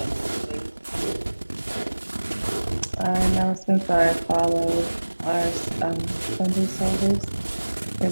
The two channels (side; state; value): both; inverted; correlation -1.00